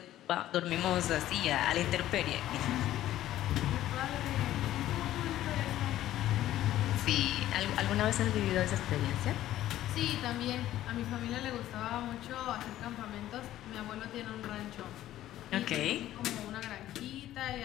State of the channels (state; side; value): quieter; right; 13.5 dB